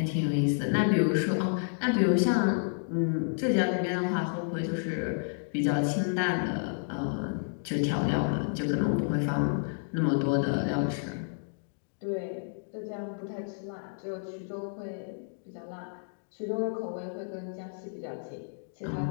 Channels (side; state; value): right; silent; digital silence